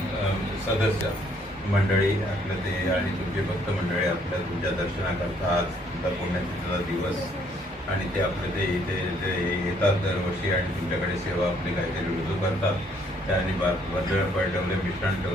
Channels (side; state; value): both; normal; correlation 0.66